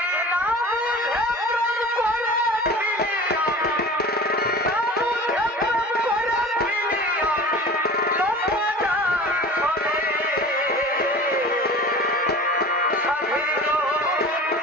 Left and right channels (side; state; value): both; normal; correlation 0.38